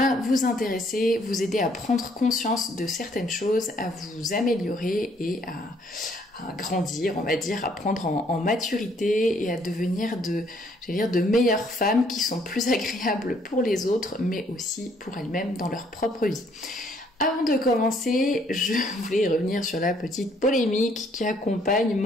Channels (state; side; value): normal; both; correlation 0.65